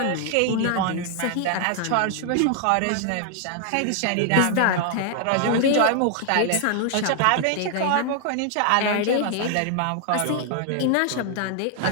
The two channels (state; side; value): different; both; correlation 0.00